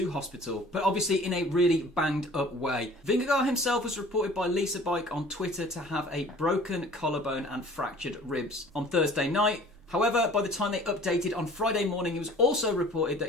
hospital, but obviously in a really banged up way. Vingegaard himself was reported by Lisa Bike on Twitter to have a broken collarbone and fractured ribs on Thursday night. However, by the time they updated on Friday morning, it was also reported that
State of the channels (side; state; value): both; normal; correlation 0.48